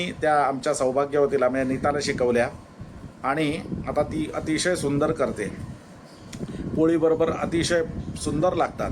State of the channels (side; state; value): both; identical; correlation 1.00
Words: त्या आमच्या सौभाग्यवतीला म्हणजे नीताला शिकवल्या आणि आता ती अतिशय सुंदर करते. पोळीबरोबर अतिशय सुंदर लागतात.